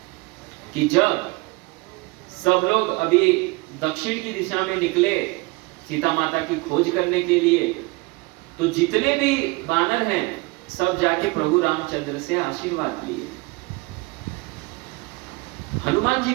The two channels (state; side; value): quieter; left; 25.8 dB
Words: कि जब सब लोग अभी दक्षिण की दिशा में निकले सीता माता की खोज करने के लिए, तो जितने भी वानर हैं सब जाके प्रभु रामचंद्र से आशीर्वाद लिए। हनुमान जी